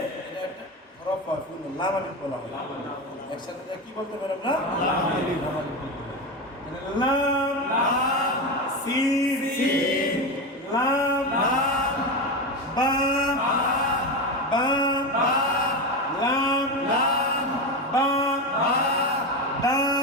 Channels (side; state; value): both; normal; correlation 0.17